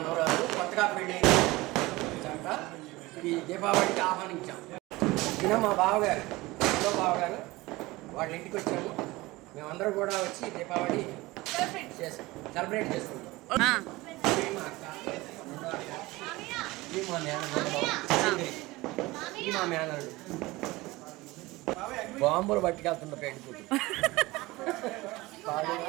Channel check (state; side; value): quieter; left; 20.6 dB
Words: కొత్తగా పెళ్ళి చక్క ఈ దీపావళికి ఆహ్వానించాం. ఈయన మా బావగారు వాళ్ళ ఇంటికి వచ్చాము. మేమందరం కూడా వచ్చి దీపావళి సెలబ్రేట్ చేసుకుంటాం. మా మేనడు బాంబులు పట్టుకెళ్తున్న పెట్టుకుంటు